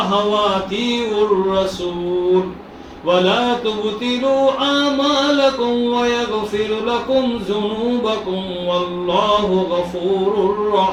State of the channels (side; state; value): both; identical; correlation 1.00